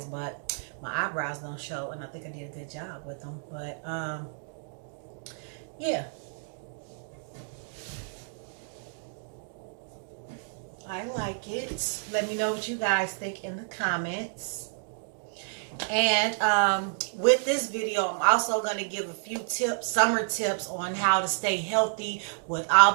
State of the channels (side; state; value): left; silent; digital silence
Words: but my eyebrows don't show, and I think I did a good job with them. But yeah, I like it. Let me know what you guys think in the comments. And with this video, I'm also going to give a few tips, summer tips on how to stay healthy with all